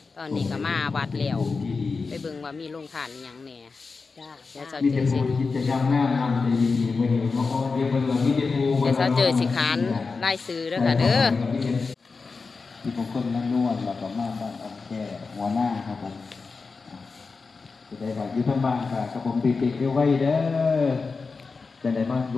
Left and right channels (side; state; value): right; quieter; 4.4 dB